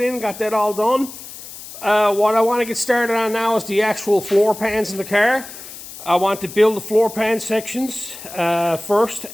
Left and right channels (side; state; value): left; noise; hiss, 14 dB below the sound